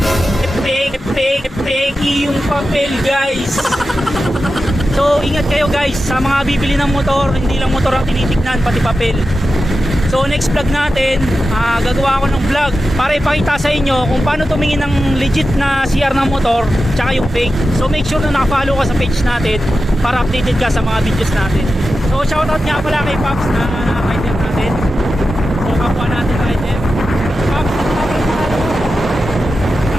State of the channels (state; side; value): normal; both; correlation 0.92